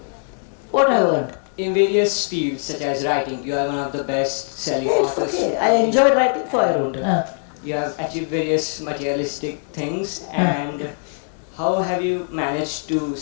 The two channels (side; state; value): right; silent; digital silence